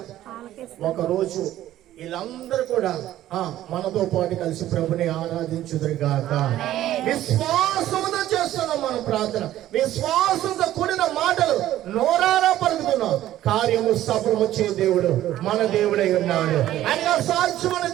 ఒకరోజు వీళ్ళందరూ కూడా మనతో పాటు కలిసి ప్రభుని ఆరాధించుదురుగాక. విశ్వాసంతో చేస్తున్నాం మనం ప్రార్థన. విశ్వాసంతో కూడిన మాటలు నోరారా పలుకుతున్నాం. కార్యము సఫలము చే దేవుడు మన దేవుడై ఉన్నాడు. ఆయనగా సాక్ష్యం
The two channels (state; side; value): quieter; left; 13.5 dB